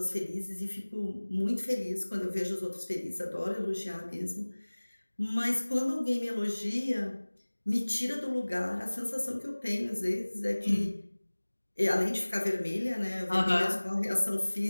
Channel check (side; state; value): both; inverted; correlation -1.00